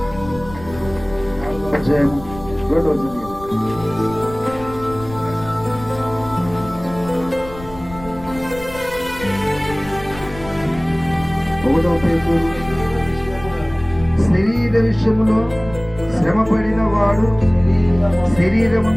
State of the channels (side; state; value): left; noise; rumble, 16 dB below the sound